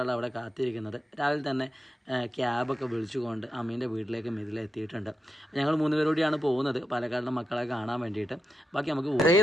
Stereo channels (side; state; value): both; normal; correlation 0.87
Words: അവിടെ കാത്തിരിക്കുന്നത്. രാവിലെ തന്നെ ക്യാബൊക്കെ വിളിച്ചുകൊണ്ട് അമ്മീൻ്റെ വീട്ടിലേക്ക് മിതിലെത്തിയിട്ടുണ്ട്. ഞങ്ങൾ 3 പേരോടെയാണ് പോകുന്നത് പാലക്കാടിലെ മക്കളെ കാണാൻ വേണ്ടിയിട്ട്. ബാക്കി നമുക്ക്